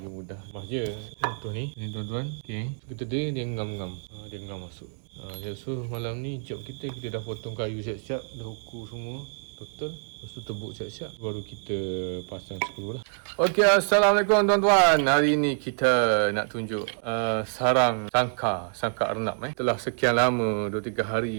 mudah. Lepas je contoh ni tuan-tuan. Okey. Kita dia ngam-ngam. Dia ngam masuk. So malam ni job kita dah potong kayu siap-siap, dah ukur semua total. Lepas tu tebuk siap-siap, baru kita pasang skru lah. Okey, Assalamualaikum tuan-tuan. Hari ni kita nak tunjuk sarang sangka arnab. Telah sekian lama, 2-3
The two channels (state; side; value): silent; left; digital silence